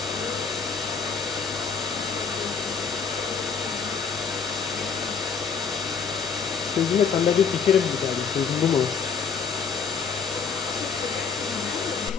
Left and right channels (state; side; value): quieter; right; 5.9 dB